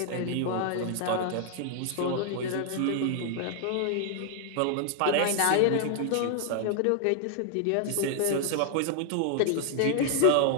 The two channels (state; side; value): different; both; correlation -0.01